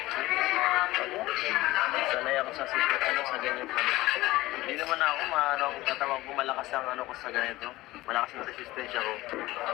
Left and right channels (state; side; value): quieter; right; 18.3 dB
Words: Sanay ako sa ano sa ganyan ano. Hindi naman ako maano kung tatawag ko malakas ang ano ko sa ganito. Malakas ang resistensya ko.